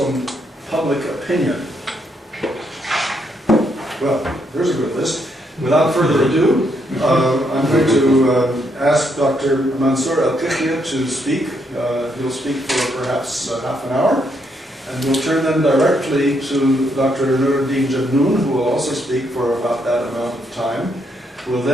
public opinion? Well, there's a good list. Without further ado, I'm going to ask Dr. Mansour Al-Qithia to speak. He'll speak for perhaps half an hour. And we'll turn then directly to Dr. Nuruddin Jabnoon, who will also speak for about that amount of time. We'll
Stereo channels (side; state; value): both; normal; correlation 0.75